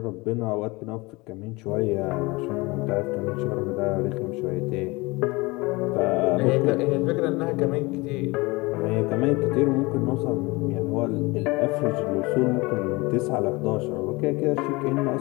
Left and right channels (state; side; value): quieter; right; 23.9 dB